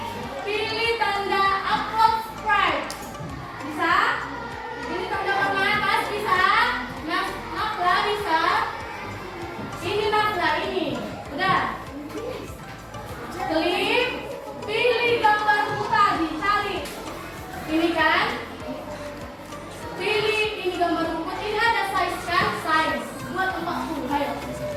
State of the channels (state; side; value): identical; both; correlation 1.00